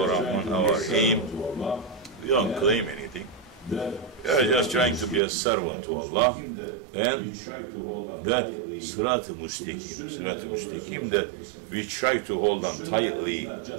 Rahman, our aim, we don't claim anything. We are just trying to be a servant to Allah, and that Sirat al-Mustaqim, that we try to hold on tightly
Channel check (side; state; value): left; drops out; at 5.2 s